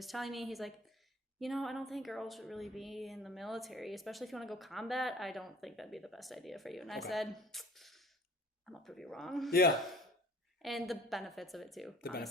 telling me, he's like, I don't think girls should really be in the military, especially if you want to go combat. I don't think that'd be the best idea for you. And I said, I'm gonna prove you wrong. Yeah. And the benefits of it too.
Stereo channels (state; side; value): normal; both; correlation 0.47